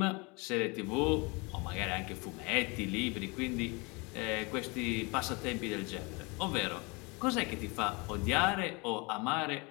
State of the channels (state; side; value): quieter; right; 28.4 dB